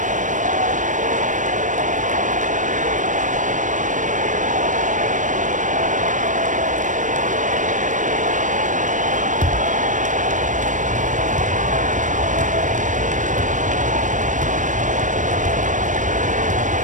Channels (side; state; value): left; late; 0.37 ms